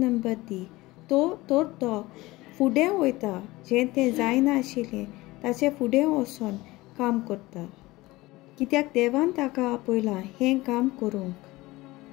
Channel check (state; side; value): quieter; right; 19.9 dB